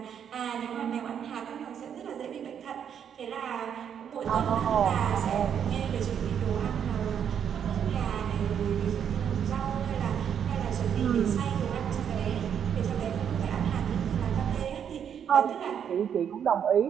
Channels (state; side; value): quieter; left; 8.4 dB